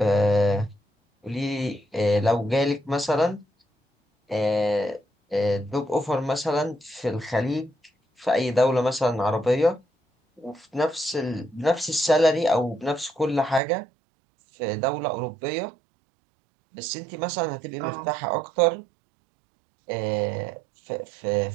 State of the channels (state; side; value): drops out; left; at 13.6 s